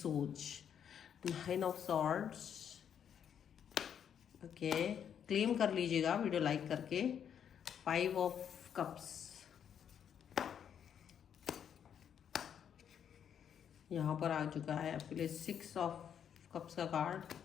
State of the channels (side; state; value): right; quieter; 8.5 dB